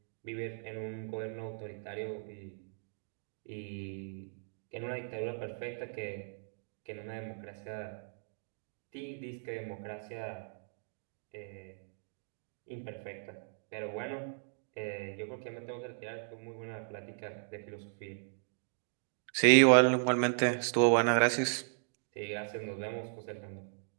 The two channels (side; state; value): left; silent; digital silence